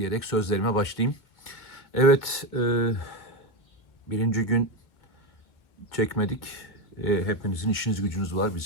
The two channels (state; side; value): late; right; 2.1 ms